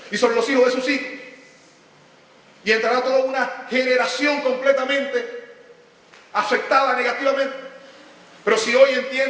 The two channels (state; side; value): identical; both; correlation 1.00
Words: y sobre los hijos de sus hijos. Y entrará toda una generación completamente afectada negativamente. Pero si hoy